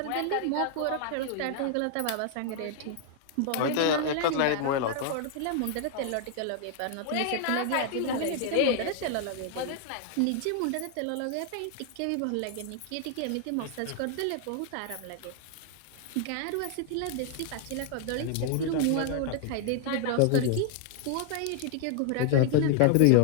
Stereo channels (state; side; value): different; both; correlation 0.00